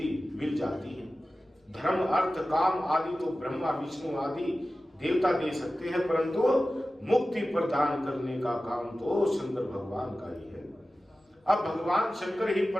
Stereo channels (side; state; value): both; normal; correlation 0.95